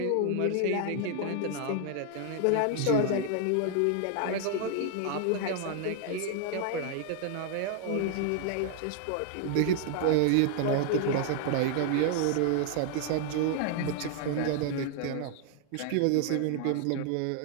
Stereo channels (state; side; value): different; both; correlation 0.00